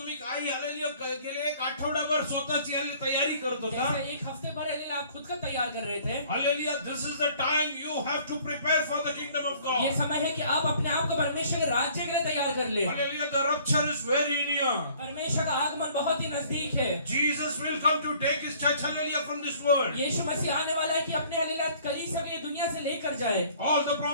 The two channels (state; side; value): inverted; both; correlation -0.56